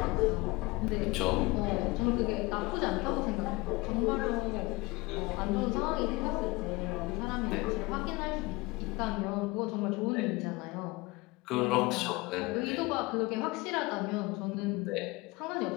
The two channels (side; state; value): right; quieter; 23.3 dB